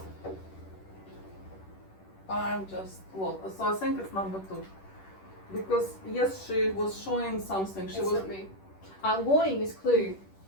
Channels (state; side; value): late; right; 10 ms